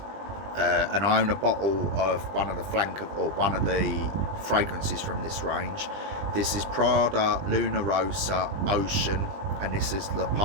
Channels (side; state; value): left; late; 20 ms